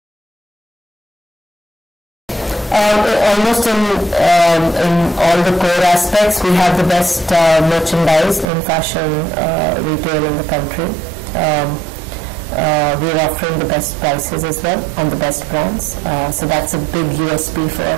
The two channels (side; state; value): left; drops out; at 8.5 s